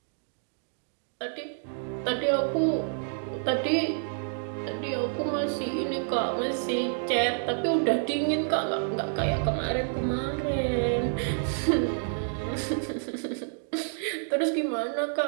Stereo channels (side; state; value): left; silent; digital silence